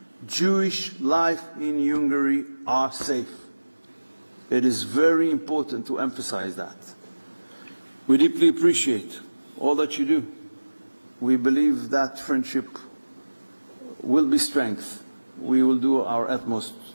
Jewish life in Hungary are safe. It is very important to emphasize that. We deeply appreciate all that you do. We believe that friendship will be strength. We will do our utmost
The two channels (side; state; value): both; inverted; correlation -1.00